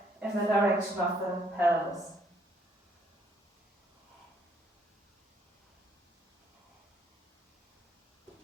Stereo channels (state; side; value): normal; both; correlation 0.67